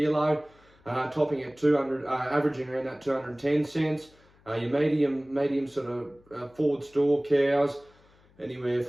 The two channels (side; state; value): left; noise; hum, 30 dB below the sound